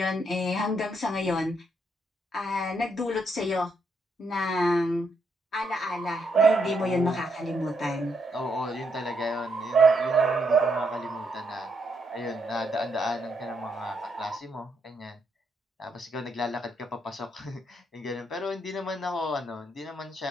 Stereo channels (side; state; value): both; normal; correlation 0.77